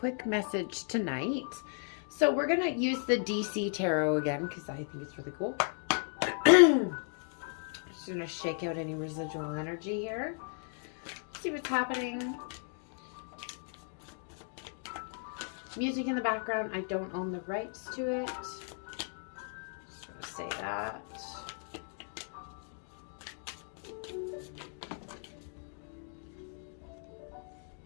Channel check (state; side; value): silent; right; 54 dB below the other